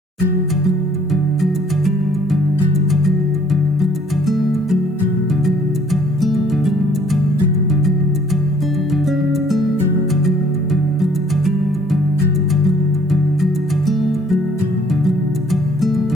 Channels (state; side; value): normal; both; correlation 0.60